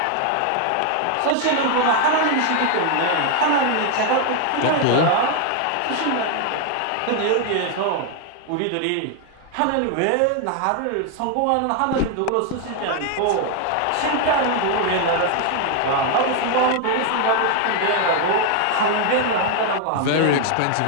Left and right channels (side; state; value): both; different; correlation 0.01